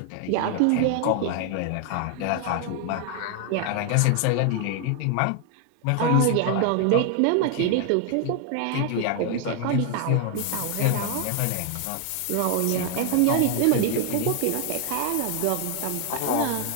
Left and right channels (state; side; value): different; both; correlation 0.00